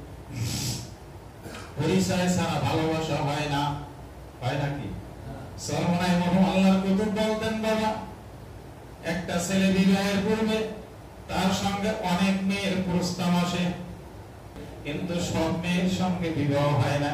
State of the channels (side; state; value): both; identical; correlation 1.00